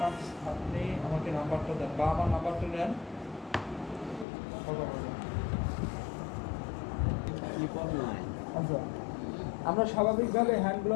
আপনি আমাকে নাম্বারটা দেন বা আমার নাম্বারটা নেন, কথা বলবেন। আচ্ছা, আমরা স্বাভাবিকভাবে হ্যান্ড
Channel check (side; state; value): right; drops out; at 4.2 s